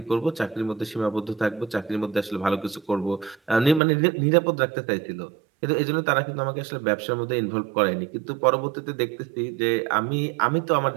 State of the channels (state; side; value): drops out; left; at 3.8 s